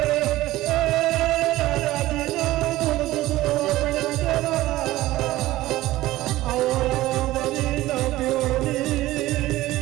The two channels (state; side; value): quieter; left; 16.7 dB